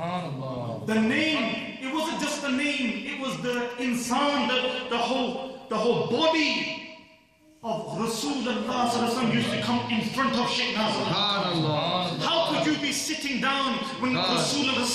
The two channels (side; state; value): both; identical; correlation 1.00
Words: The name, it wasn't just the name, it was the insan, the whole body of Rasulullah used to come in front of Shaykh Nazim al-Haqqani. How could you be sitting down when Rasulullah